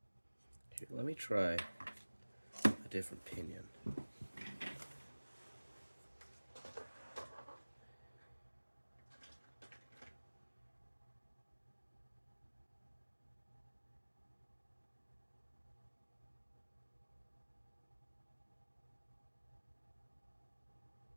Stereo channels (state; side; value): inverted; both; correlation -1.00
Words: Here, let me try a different pinion.